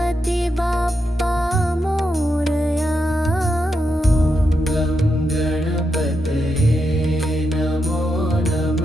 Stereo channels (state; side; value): normal; both; correlation 0.84